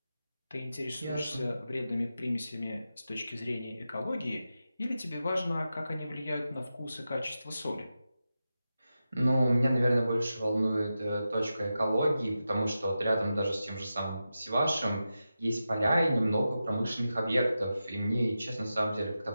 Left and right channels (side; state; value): both; inverted; correlation -0.91